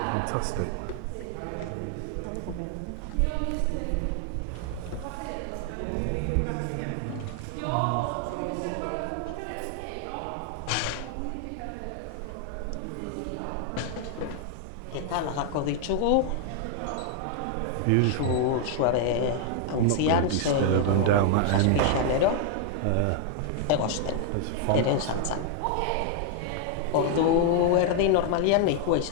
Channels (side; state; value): both; different; correlation 0.00